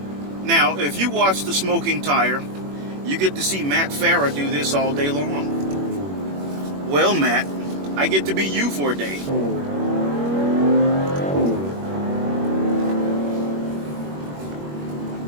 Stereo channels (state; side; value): late; left; 21 ms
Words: Now, if you watch The Smoking Tire, you get to see Matt Farah do this all day long. Well, Matt, I get to be you for a day.